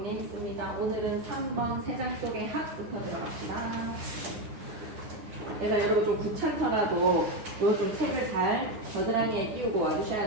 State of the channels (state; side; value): late; left; 9.7 ms